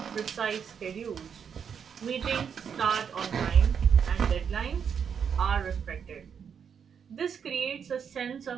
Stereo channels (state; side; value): quieter; left; 7.2 dB